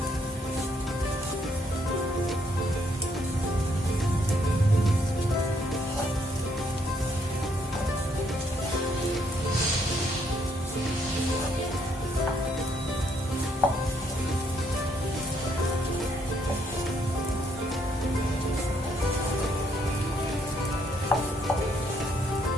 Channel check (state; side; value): normal; both; correlation 0.71